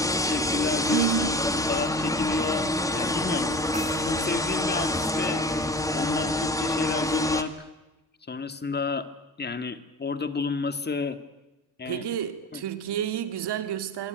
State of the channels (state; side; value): normal; both; correlation 0.35